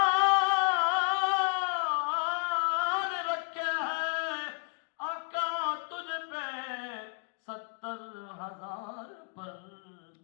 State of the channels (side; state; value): right; quieter; 38.3 dB